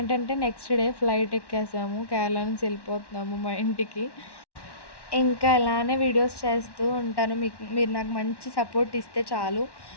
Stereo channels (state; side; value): late; right; 1.1 ms